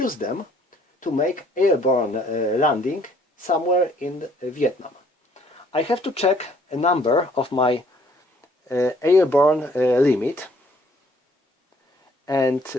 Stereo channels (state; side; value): normal; both; correlation 0.61